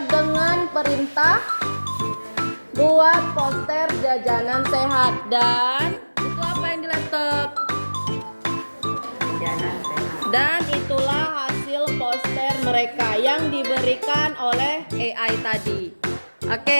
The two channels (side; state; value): both; inverted; correlation -1.00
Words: dengan perintah buat poster jajanan sehat. Dan itu apa yang di laptop? Jajanan sehat. Dan itulah hasil poster mereka yang diberikan oleh AI tadi.